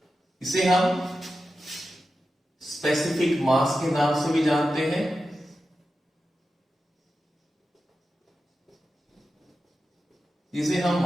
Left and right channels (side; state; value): both; normal; correlation 0.92